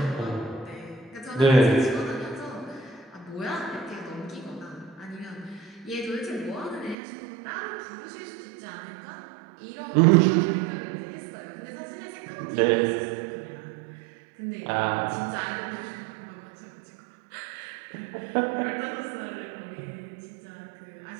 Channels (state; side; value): drops out; left; at 7.0 s